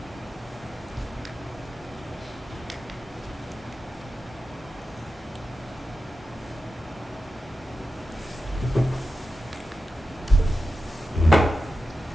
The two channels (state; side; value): normal; both; correlation 0.91